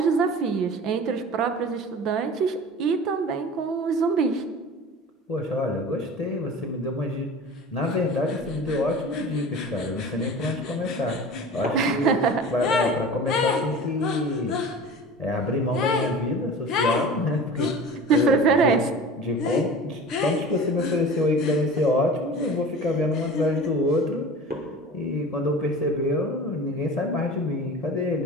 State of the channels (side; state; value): both; normal; correlation 0.37